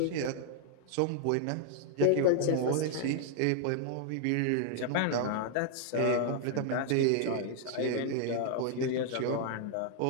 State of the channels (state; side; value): different; both; correlation -0.01